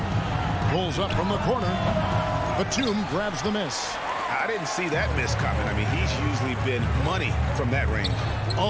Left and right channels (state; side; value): identical; both; correlation 1.00